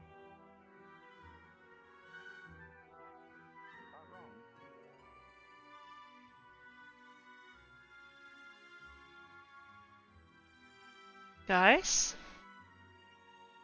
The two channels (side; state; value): both; identical; correlation 1.00